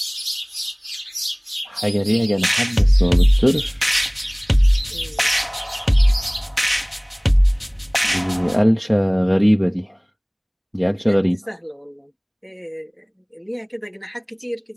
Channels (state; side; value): identical; both; correlation 1.00